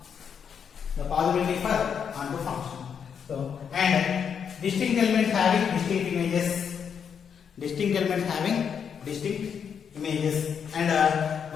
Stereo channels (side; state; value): right; quieter; 7.3 dB